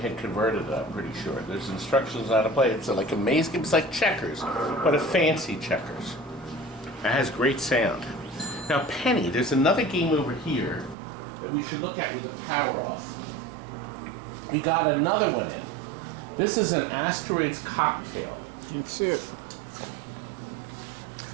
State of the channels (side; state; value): left; drops out; at 11.0 s